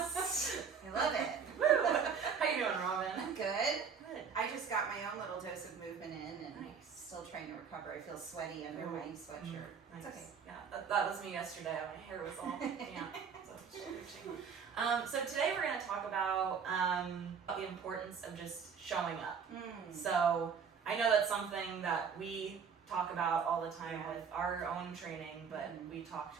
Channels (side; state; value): left; quieter; 6.5 dB